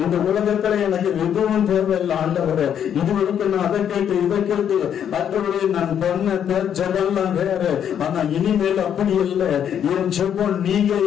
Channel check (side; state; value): right; quieter; 9.0 dB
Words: இந்த உலகத்துல எனக்கு எதுவும் தேவையில்லை ஆண்டவரே. இது வரைக்கும் நான் அதை கேட்டு இதை கேட்டு ஆண்டவரே நான் பண்ண ஜெபம்லாம் வேற. ஆனா இனிமேல் அப்படி இல்லை. என் ஜெபம் நீங்க